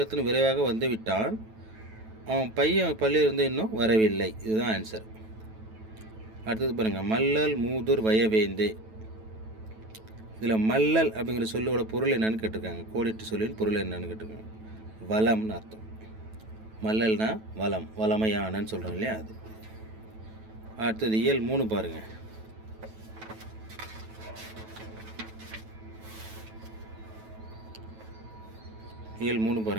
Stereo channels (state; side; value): late; left; 9.2 ms